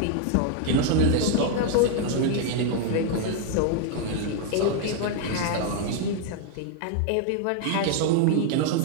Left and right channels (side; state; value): both; different; correlation 0.00